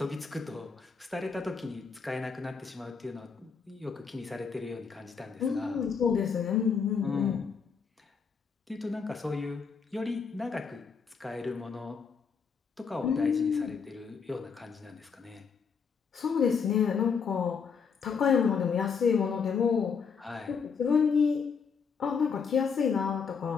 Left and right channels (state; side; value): quieter; right; 5.9 dB